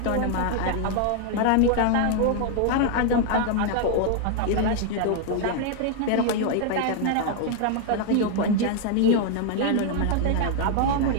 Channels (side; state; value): both; different; correlation 0.00